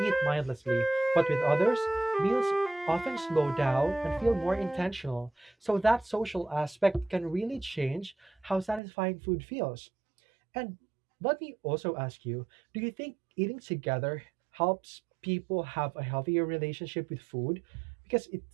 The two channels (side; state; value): left; drops out; at 8.8 s